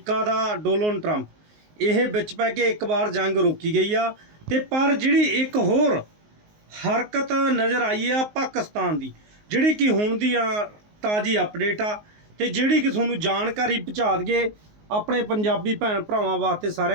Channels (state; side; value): late; left; 19 ms